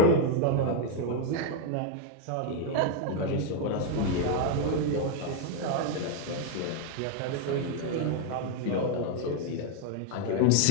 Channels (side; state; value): both; different; correlation 0.01